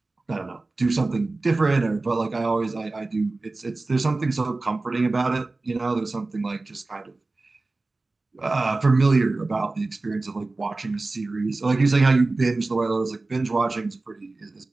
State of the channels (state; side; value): quieter; left; 3.3 dB